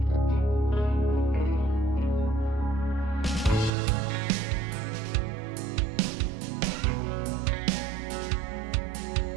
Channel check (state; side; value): drops out; left; at 3.7 s